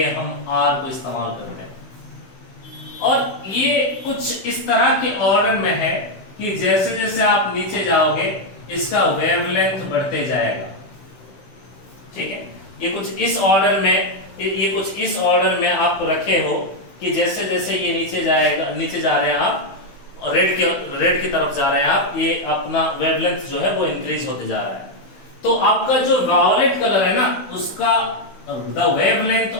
हम R को इस्तेमाल करते हैं। और ये कुछ इस तरह के ऑर्डर में है कि जैसे जैसे आप नीचे जाओगे इसका वेवलेंथ बढ़ते जाएगा। ठीक है, ये कुछ इस ऑर्डर में आप रखे हो कि जैसे जैसे ये नीचे जा रहे हैं आप, और रेड की तरफ जा रहे हैं आप, ये अपना वेवलेंथ जो है वो इंक्रीज होते जा रहा है। तो आपका जो वायोलेट कलर है ना, उसका the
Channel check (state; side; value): late; right; 16 ms